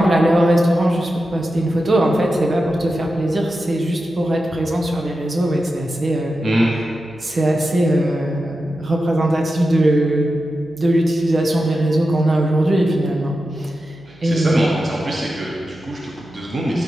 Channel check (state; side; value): noise; right; hum, 26 dB below the sound